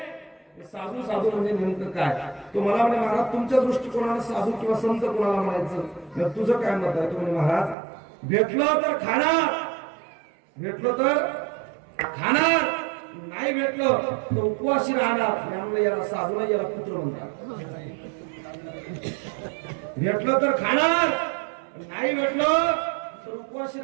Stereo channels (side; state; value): left; drops out; at 7.8 s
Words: साधू साधू म्हणजे नेमकं काय? तो मला म्हणे, महाराज तुमच्या दृष्टिकोनाने साधू किंवा संत कोणाला म्हणायचं? तुझं काय मत आहे? तो म्हणे, महाराज भेटलो तर खाणार, भेटलो तर खाणार, नाही भेटलो तर उपवासी राहणार. त्यामुळे याला साधू नाही, याला पुत्र म्हणतात. भेटलो तर खाणार, नाही भेटलो तर उपवासी